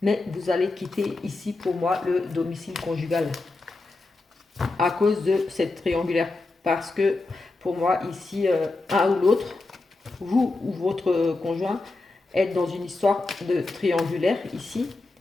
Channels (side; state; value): right; quieter; 3.3 dB